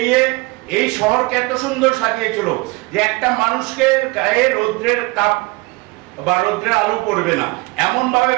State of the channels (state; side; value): quieter; left; 24.9 dB